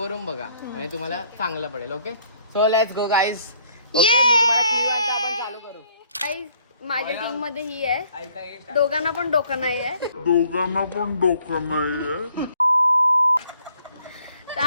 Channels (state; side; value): inverted; both; correlation -0.63